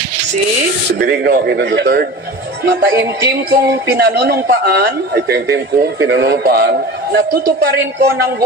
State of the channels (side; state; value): both; normal; correlation 0.35